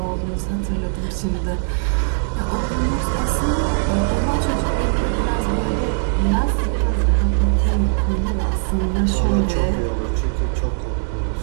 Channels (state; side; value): silent; left; digital silence